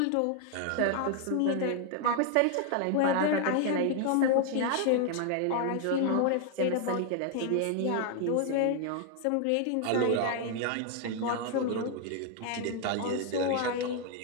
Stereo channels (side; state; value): both; different; correlation 0.00